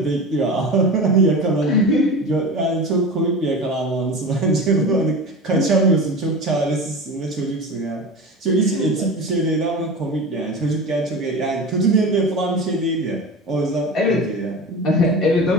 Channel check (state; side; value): normal; both; correlation 0.30